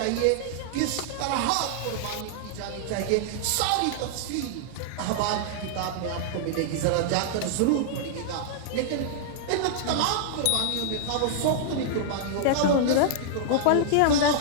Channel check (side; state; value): both; different; correlation -0.01